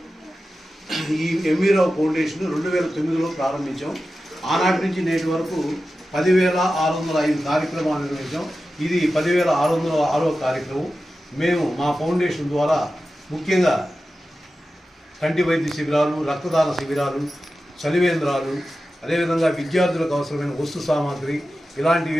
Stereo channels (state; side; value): normal; both; correlation 0.93